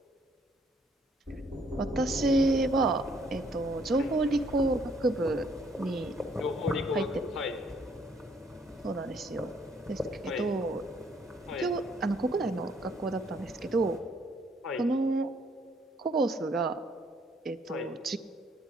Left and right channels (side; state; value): both; normal; correlation 0.65